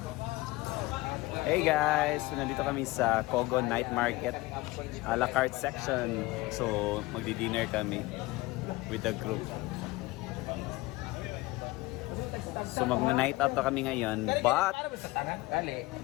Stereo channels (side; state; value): right; quieter; 20.6 dB